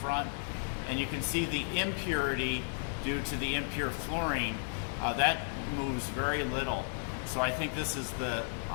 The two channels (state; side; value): silent; right; digital silence